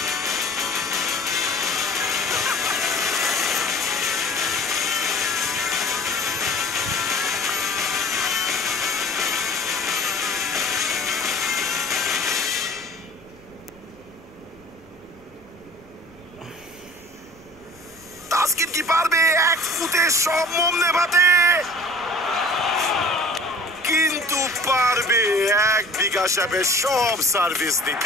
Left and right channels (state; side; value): noise; left; rumble, 28 dB below the sound